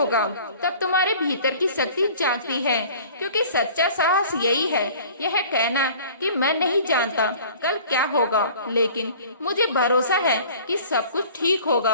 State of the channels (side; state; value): both; inverted; correlation -0.46